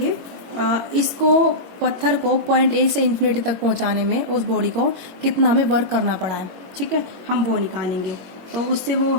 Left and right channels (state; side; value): late; left; 22 ms